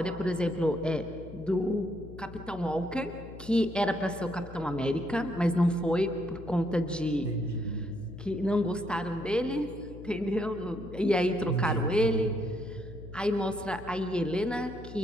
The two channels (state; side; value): noise; left; hum, 15 dB below the sound